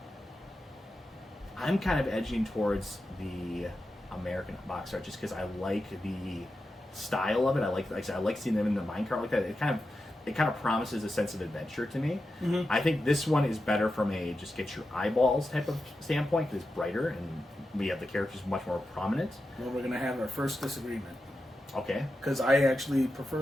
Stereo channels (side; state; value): both; normal; correlation 0.90